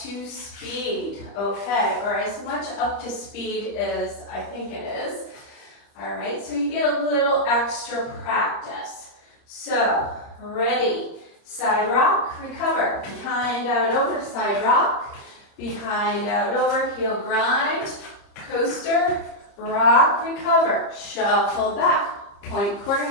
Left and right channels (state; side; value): late; right; 30 ms